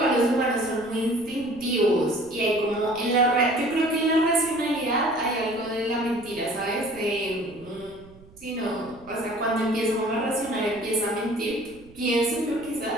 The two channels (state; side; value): noise; right; rumble, 23 dB below the sound